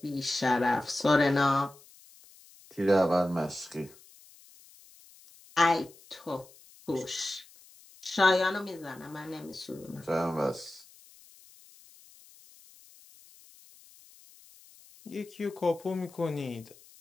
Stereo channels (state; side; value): noise; left; hiss, 24 dB below the sound